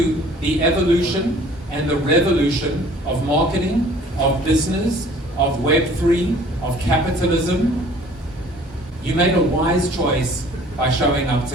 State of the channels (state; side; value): normal; both; correlation 0.52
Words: the evolution and the revolution of marketing, of business, of Web3, of capitalism. You made a wise choice by showing up